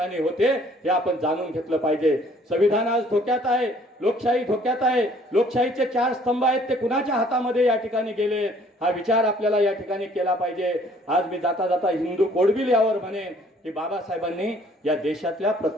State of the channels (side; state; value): both; normal; correlation 0.59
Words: होते, हे आपण जाणून घेतलं पाहिजे. संविधान आज धोक्यात आहे, लोकशाही धोक्यात आहे. लोकशाहीचे 4 स्तंभ आहेत ते कुणाच्या हातामध्ये या ठिकाणी गेले, हा विचार आपल्याला या ठिकाणी केला पाहिजे. आज मी जाता जाता हिंदू कोड बिल यावर म्हणेन की बाबासाहेबांनी या देशातल्या